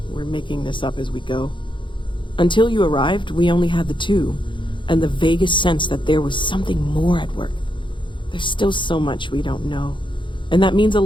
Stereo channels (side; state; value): right; late; 0.23 ms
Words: we're making this up as we go. Until you arrived, we only had the two, and the vaguest sense that there was something more at work. There's still so much we don't know, and that means a